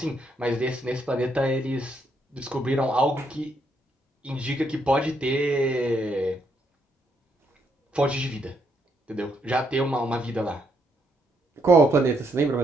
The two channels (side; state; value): both; normal; correlation 0.75